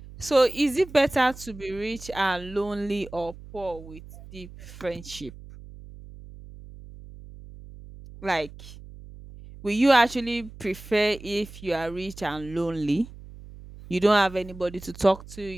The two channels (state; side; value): noise; right; hum, 17 dB below the sound